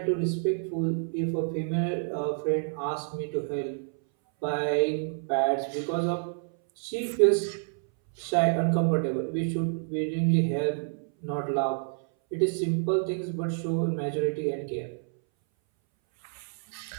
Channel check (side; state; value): left; silent; 59 dB below the other